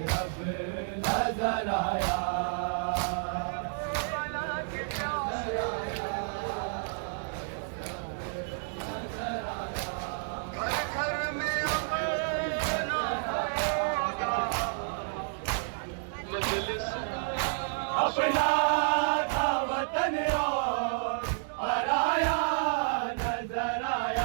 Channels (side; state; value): left; silent; digital silence